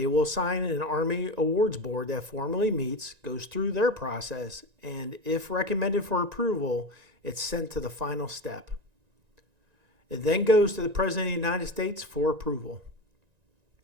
will assign an Army Awards Board that formally meets, goes through their process, and if recommended for approval, it's sent to the final step. It then goes to the President of the United States for approval.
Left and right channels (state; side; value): late; left; 1.9 ms